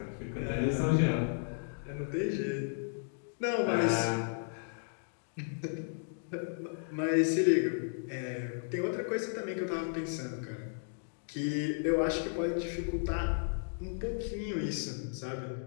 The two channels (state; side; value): silent; right; digital silence